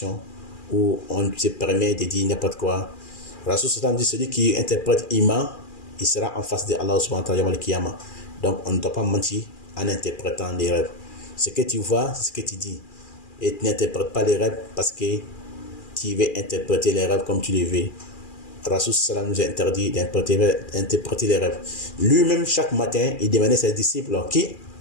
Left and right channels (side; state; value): right; late; 2.4 ms